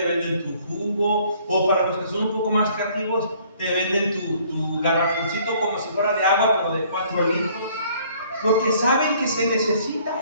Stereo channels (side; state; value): both; inverted; correlation -0.59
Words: venden tu jugo, o para los que son un poco más creativos, te venden tu garrafoncito como si fuera de agua, pero de 4 litros. Porque saben que se